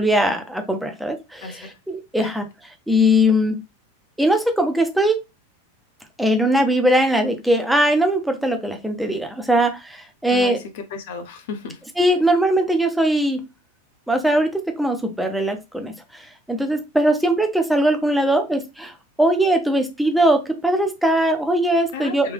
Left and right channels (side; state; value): both; normal; correlation 0.72